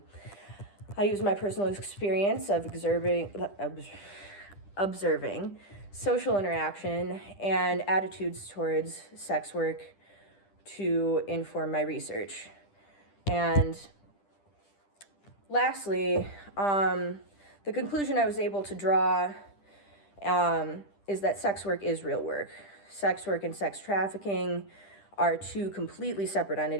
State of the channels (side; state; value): right; late; 10 ms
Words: use my personal experience of observing social interaction and attitudes towards sex work to inform my research. And lastly, the conclusion I was able to draw is that sex work is real work. Sex work and sex trafficking are two completely separate